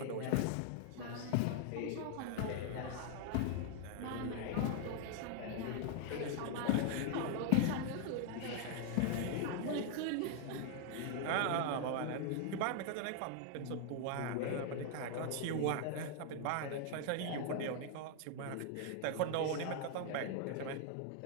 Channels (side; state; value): both; different; correlation 0.00